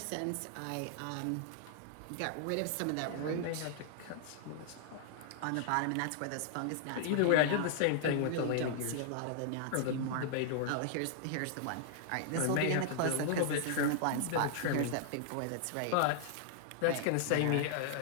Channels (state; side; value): different; both; correlation -0.01